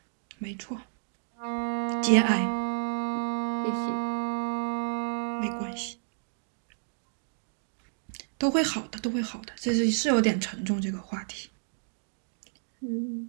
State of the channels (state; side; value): silent; left; digital silence